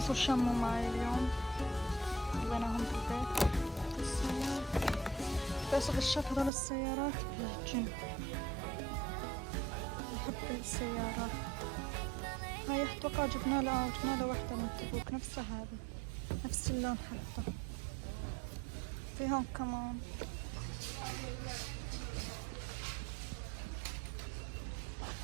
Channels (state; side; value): drops out; left; at 6.5 s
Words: شموا معي اليوم خليناهم بالبيت. بس غشيت هذول السيارات بالجن، بحب السيارات هاي. اتوقع جبنا له وحدة من تبوك نفسها هذه، نفس اللون حتى. في هون كمان